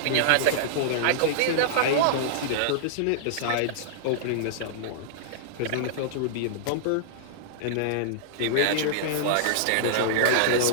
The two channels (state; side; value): different; both; correlation -0.02